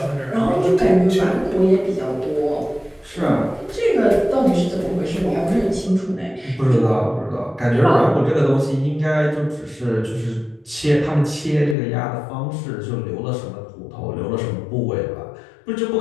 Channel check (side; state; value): right; drops out; at 11.8 s